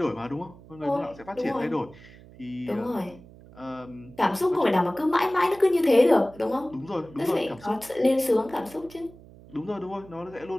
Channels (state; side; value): noise; right; hum, 21 dB below the sound